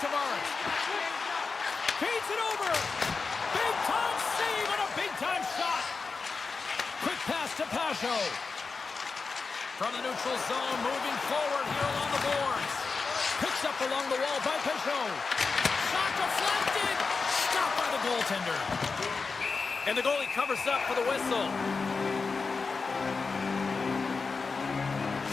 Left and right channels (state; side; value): quieter; right; 4.5 dB